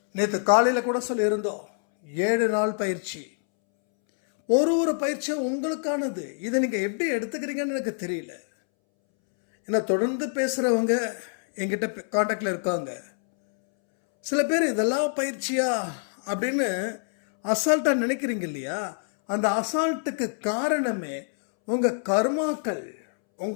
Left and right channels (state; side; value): silent; right; 61 dB below the other